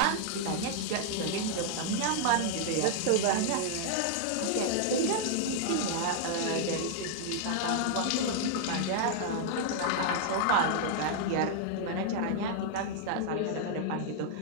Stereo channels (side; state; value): both; different; correlation 0.00